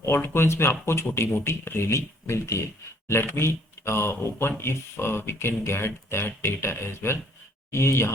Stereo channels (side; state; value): both; normal; correlation 0.62